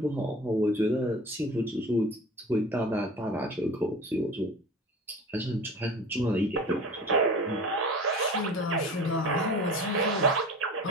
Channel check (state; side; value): normal; both; correlation 0.37